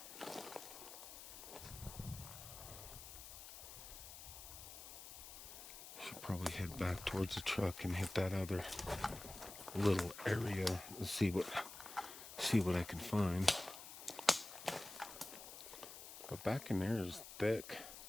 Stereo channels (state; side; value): noise; left; hiss, 12 dB below the sound